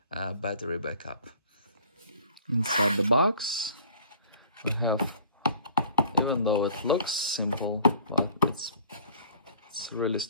battery backup. Inside the box we have, even though it looks simple, well, it's really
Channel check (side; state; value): both; inverted; correlation -0.52